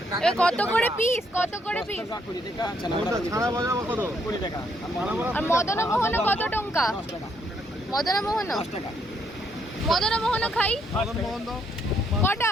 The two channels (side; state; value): both; normal; correlation 0.73